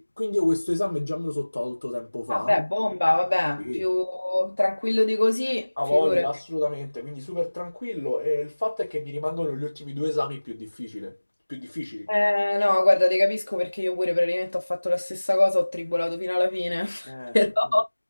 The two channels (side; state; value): both; inverted; correlation -1.00